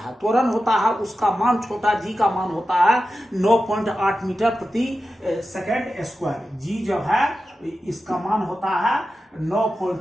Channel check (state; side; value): normal; both; correlation 0.92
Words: त्वरण होता है, उसका मान, छोटा जी का मान होता है 9.8 मीटर प्रति सेकेंड स्क्वायर। जी जो है इसका मान होता है